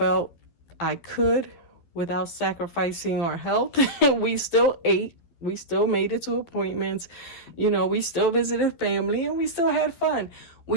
I could without sacrificing our health. We still ate. We still made it to appointments. You know, we still visited family and we still had fun.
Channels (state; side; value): late; right; 12 ms